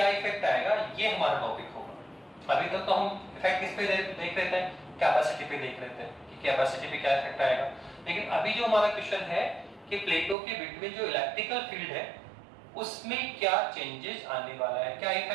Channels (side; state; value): left; drops out; at 10.4 s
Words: इफेक्ट आएगा, ये हमारा टॉपिक होगा। अभी तक तो हम इफेक्ट किस पे देख रहे थे? कैपेसिटी पे देख रहे थे कि कैपेसिटी पे क्या इफेक्ट आएगा। लेकिन अभी जो हमारा क्वेश्चन है कि प्लेटों के बिटवीन जो इलेक्ट्रिकल फील्ड है, उसमें क्या चेंजेस आने वाला है, क्या